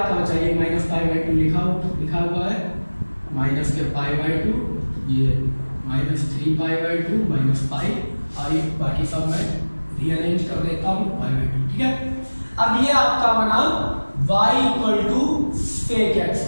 बचा, ये माइनस पाई बाई टू लिखा हुआ है, माइनस के पाई बाई टू, ये minus 3 pi by two minus pi, और ये बाकी सब मैं रीअरेंज कर देता हूँ पाई बाई टू, ठीक है? अब ये आपका बना y equal to sec x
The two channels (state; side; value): inverted; both; correlation -1.00